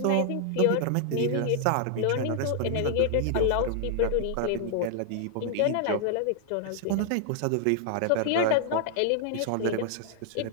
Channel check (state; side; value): different; both; correlation -0.01